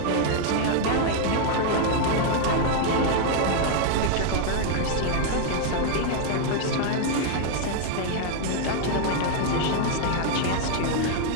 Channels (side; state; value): both; different; correlation 0.00